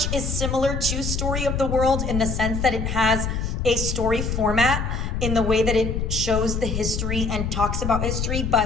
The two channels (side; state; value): left; noise; rumble, 2 dB below the sound